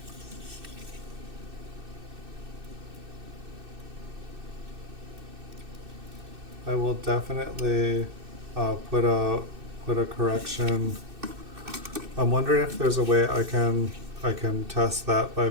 I will definitely put a correction. I'm wondering if there's a way I can test that by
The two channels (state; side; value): late; left; 2.6 ms